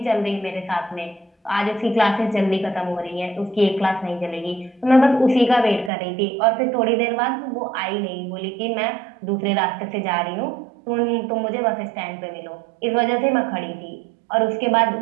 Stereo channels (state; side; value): drops out; left; at 5.9 s